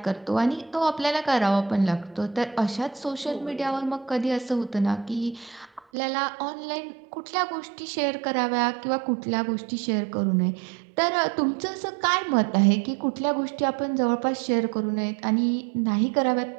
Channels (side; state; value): left; drops out; at 5.8 s